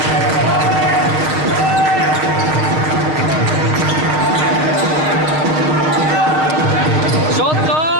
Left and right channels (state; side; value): late; left; 6.4 ms